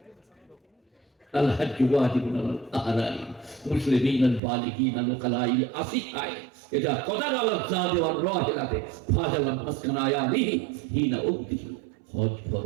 আল্লাহ মুসলিমিন আল বালিগিন আল কালাইল আসিহায় ইদা কদার আল জাদ ওয়ার রাহিলাতে ফাজাল মাসকান আয়ালিহি হিনা উদ্দিহি। হজ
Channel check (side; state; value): left; drops out; at 4.4 s